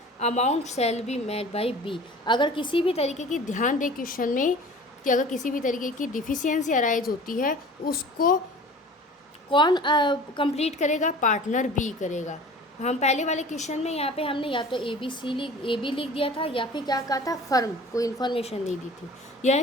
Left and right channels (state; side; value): normal; both; correlation 0.43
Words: amount shall be made by B, अगर किसी भी तरीके की, ध्यान दे क्वेश्चन में कि अगर किसी भी तरीके की डिफिशियंसी अराइज होती है उसको कौन कंप्लीट करेगा? पार्टनर बी करेगा। हम पहले वाले क्वेश्चन में यहाँ पे हमने या तो ए बी लिख दिया था या फिर क्या कहा था, फर्म कोई इन्फॉर्मेशन नहीं दी थी। यह